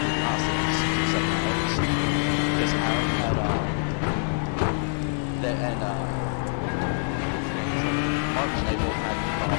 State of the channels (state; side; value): silent; right; 61 dB below the other